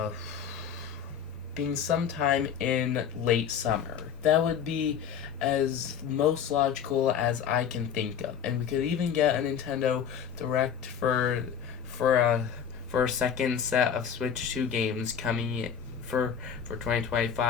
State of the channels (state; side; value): quieter; right; 7.8 dB